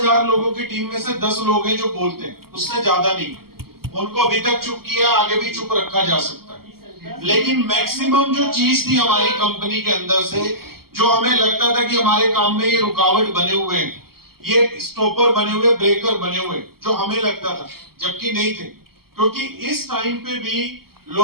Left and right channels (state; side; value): late; left; 0.94 ms